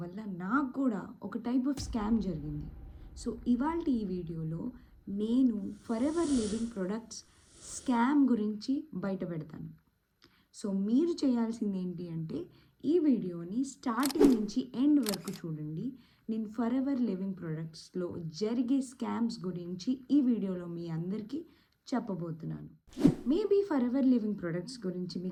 వల్ల నాకు కూడా ఒక టైప్ ఆఫ్ స్కామ్ జరిగింది. సో ఇవాళ ఈ వీడియోలో నేను for ever living products scam గురించి బయట పెడతాను. సో మీరు చేయాల్సింది ఏంటి అంటే ఈ వీడియోని స్టార్టింగ్ నుంచి ఎండ్ వరకు చూడండి. నేను ఫర్ ఎవర్ లివింగ్ ప్రొడక్ట్స్లో జరిగే స్కామ్స్ గురించి ఈ వీడియోలో మీ అందరికీ చెప్పబోతున్నాను. Maybe for ever living products గురించి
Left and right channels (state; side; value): identical; both; correlation 1.00